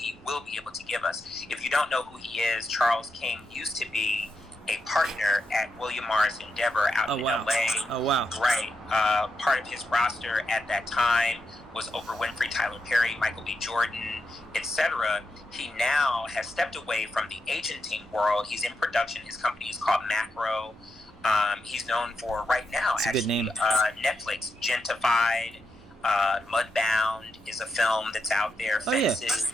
will be able to give us. If you don't know who he is, Charles King used to be a partner at William Morris Endeavor out in LA. Oh, wow. Right. Part of his roster at that time was Oprah Winfrey, Tyler Perry, Michael B. Jordan, etc. He now has stepped away from the agenting world. He's in production. His company is called Macro. He's known for right now, That's a good name. Netflix, Gentified, Mudbound is a film that's out there.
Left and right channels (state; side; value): normal; both; correlation 0.85